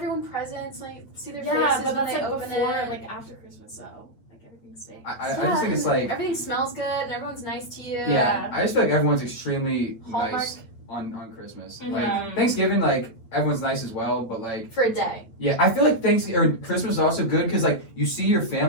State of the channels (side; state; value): right; late; 8.8 ms